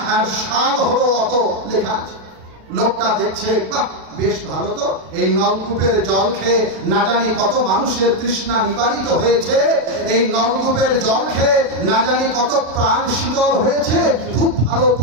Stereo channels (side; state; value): left; late; 36 ms